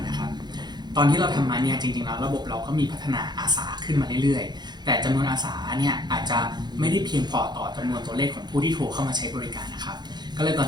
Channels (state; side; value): late; left; 0.21 ms